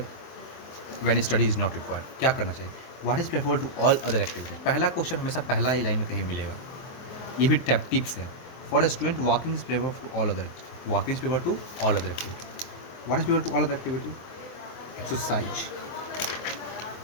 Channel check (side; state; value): right; late; 23 ms